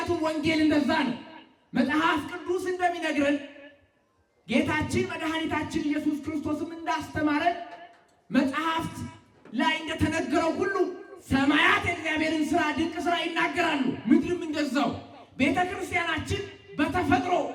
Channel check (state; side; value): identical; both; correlation 1.00